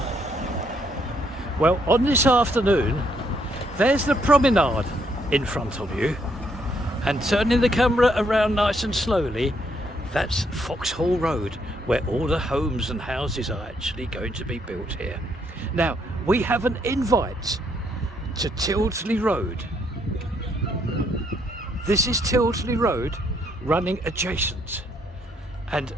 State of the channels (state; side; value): normal; both; correlation 0.72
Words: Well, on this afternoon there's the promenade in front of you, and turning the camera around nice and slowly, that's Foxhall Road, where all the homes and houses are actually going to be built here. Now we have an invite to Tildesley Road. This is Tildesley Road running adjacent, and